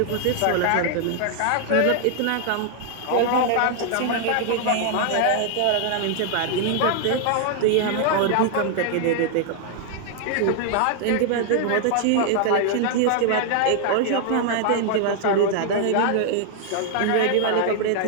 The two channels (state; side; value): different; both; correlation 0.00